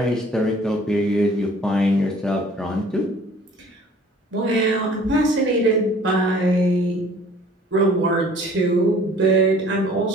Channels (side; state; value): both; normal; correlation 0.52